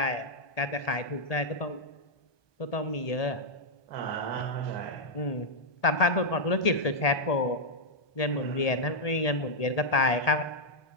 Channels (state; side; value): late; right; 1.8 ms